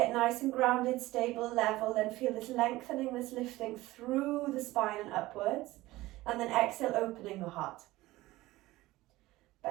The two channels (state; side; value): quieter; left; 18.1 dB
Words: nice and grounded, stable, level, then feel this lengthening, this lifting through the spine and upwards. And then exhale, opening the heart.